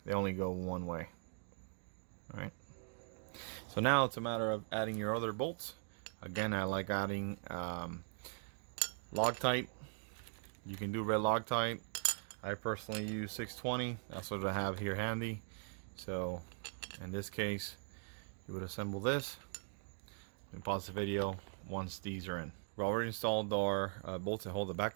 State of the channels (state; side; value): silent; left; 51 dB below the other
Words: They only go one way. Alright. So now it's a matter of adding your other bolts. Again, I like adding Loctite You can do red Loctite. I personally use 620. That's what I have here handy. So in this case, you would assemble this. We pause the video once these are in. We already installed our bolts that hold the